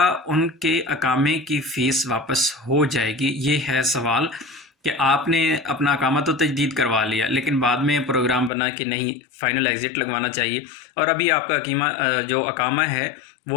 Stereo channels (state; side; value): drops out; right; at 8.5 s